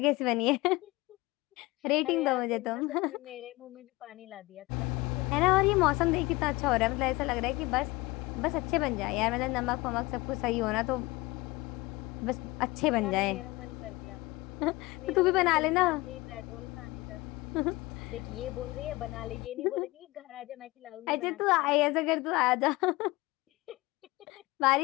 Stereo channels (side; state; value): right; quieter; 21.7 dB